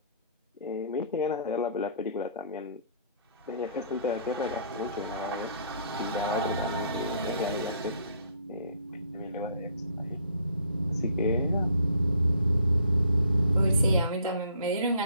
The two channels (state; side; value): inverted; both; correlation -0.60